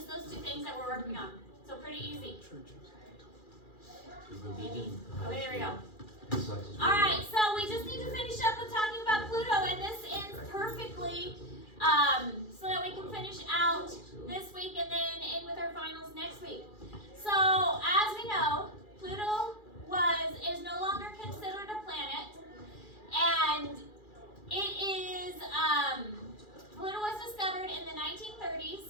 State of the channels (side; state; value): right; late; 2.4 ms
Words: those two things that we're working on. So pretty easy. Maybe. Okay, there we go. Alright, so we just need to finish up with talking about Pluto, and this ends perfectly, so that we can finish out this week and then end with our finals next week. So, as we know, Pluto is no longer considered a planet, and it is, Pluto was discovered in the 1930s